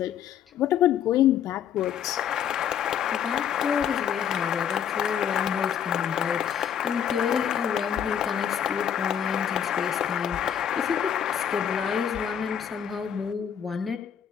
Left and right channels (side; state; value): right; quieter; 8.9 dB